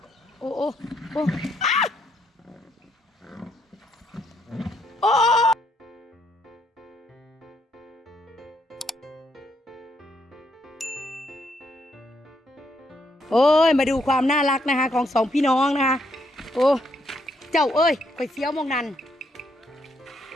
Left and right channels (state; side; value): normal; both; correlation 0.74